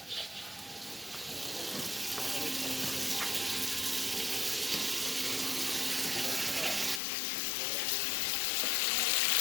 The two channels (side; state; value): right; drops out; at 7.0 s